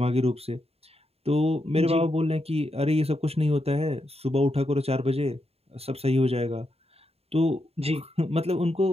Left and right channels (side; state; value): left; late; 0.29 ms